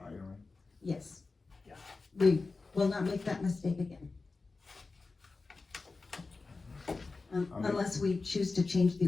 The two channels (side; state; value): right; quieter; 3.9 dB